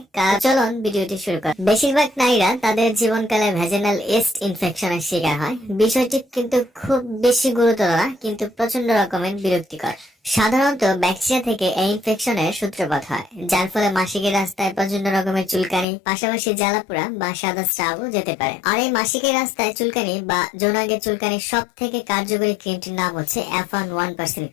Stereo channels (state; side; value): drops out; right; at 15.9 s